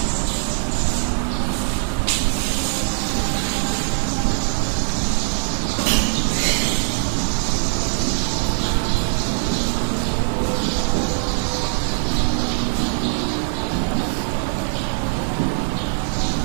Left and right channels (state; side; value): silent; left; digital silence